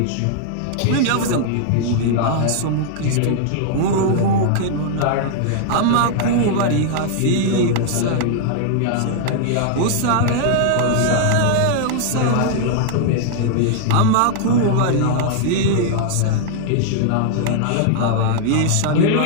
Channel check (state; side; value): different; both; correlation -0.01